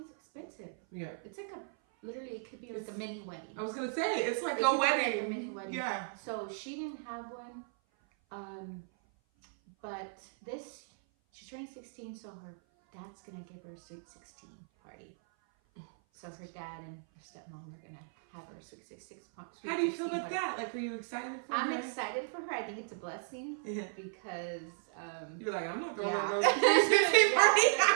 it's expensive. Yeah. It's like literally it could be like a mini wedding. I was gonna say it's like a wedding. Like a mini wedding. Yeah. So she didn't have one. But she's turning 16, so her dad's gonna give her a sweet 16 party. So her dad and her stepmom are gonna have her sweet 16 party. How do you feel about that? Like, are you excited for her? I'm excited for her. I think it's a blessing because you're like, I'm not going to go to the 16 party.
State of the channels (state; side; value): silent; left; 54 dB below the other